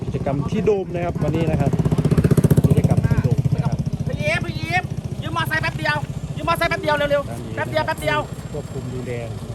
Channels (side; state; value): both; identical; correlation 1.00